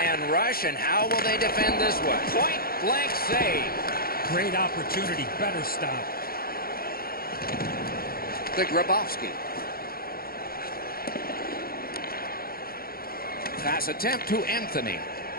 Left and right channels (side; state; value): right; late; 0.43 ms